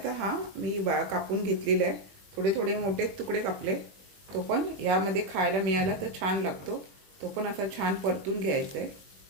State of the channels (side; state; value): left; late; 21 ms